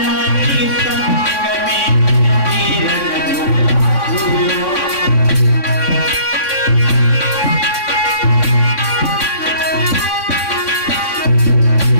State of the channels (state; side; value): late; right; 3.6 ms